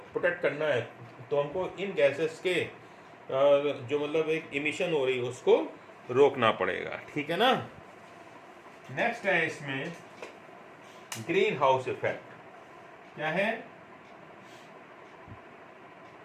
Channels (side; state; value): both; identical; correlation 1.00